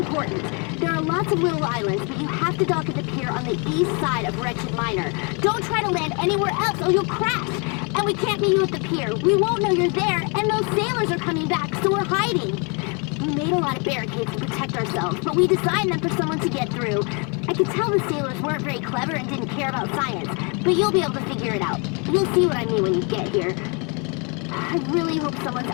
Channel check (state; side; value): quieter; right; 33.6 dB